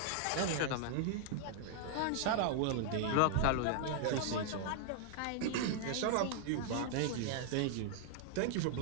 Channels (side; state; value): both; different; correlation -0.01